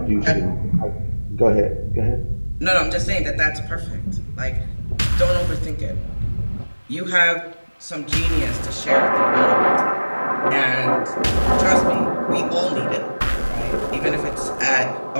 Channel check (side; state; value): both; inverted; correlation -1.00